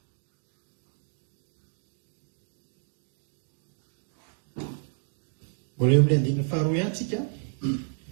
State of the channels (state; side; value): silent; left; 56 dB below the other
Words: mbola eo amin'ny andininy faharoa ihany tsika